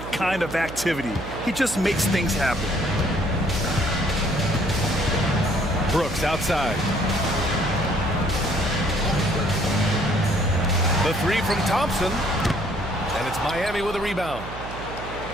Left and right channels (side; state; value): right; noise; hum, 11 dB below the sound